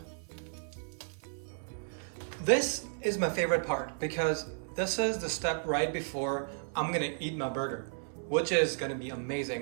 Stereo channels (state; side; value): silent; left; 55 dB below the other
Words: This is my favorite part, because this is the step right before I'm gonna eat my burger, which is gonna be